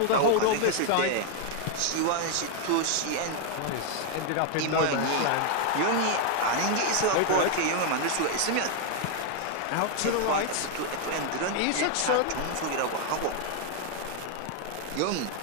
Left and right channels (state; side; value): different; both; correlation 0.01